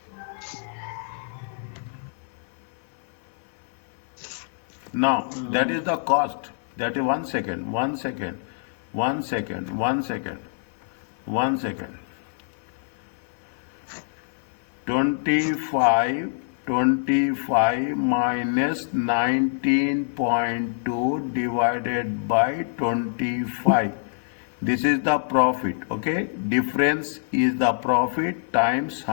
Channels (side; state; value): right; silent; digital silence